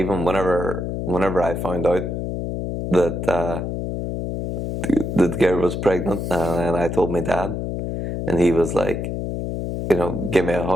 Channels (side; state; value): left; noise; hum, 3 dB below the sound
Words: whenever I found out that. The girl was pregnant, and I told my dad, and he was like, give me a